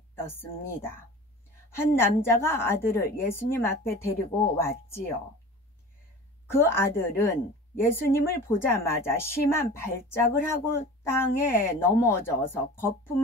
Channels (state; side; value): normal; both; correlation 0.38